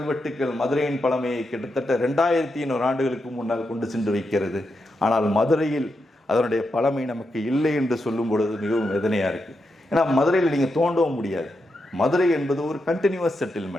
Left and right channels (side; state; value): both; normal; correlation 0.85